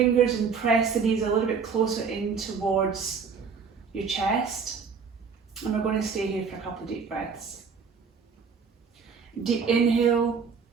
and press the knees a little bit closer in towards your chest. And we're going to stay here for a couple of deep breaths. Deep inhale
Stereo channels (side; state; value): left; quieter; 5.8 dB